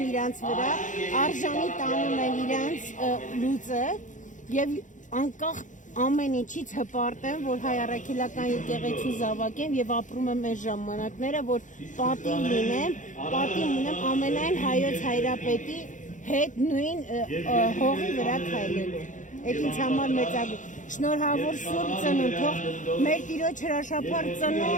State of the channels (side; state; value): right; late; 0.37 ms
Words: իրանց վրա, արժանի տանում են իրանց լուծը եւ անկախ ամեն ինչից հպարտ եմ, որ հայ առաքելական եկեղեցու զավակ եմ եւ ապրում եմ այս ժամանակները, որ պատիվ լինեմ, պատիվ ունեմ ամենայն հայոց հայրապետի հետ նույն հողի վրա քայլելու։ Այդ ինձ համար մեծագույն շնորհավոր Սուրբ Ծնունդ, թող մեր Տիրոջ հրաշափառ